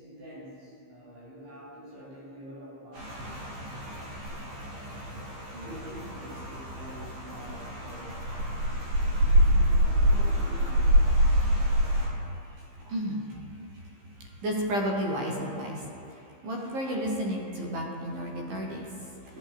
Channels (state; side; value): late; left; 15 ms